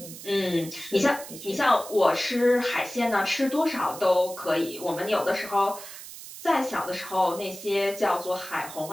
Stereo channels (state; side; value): noise; right; hiss, 13 dB below the sound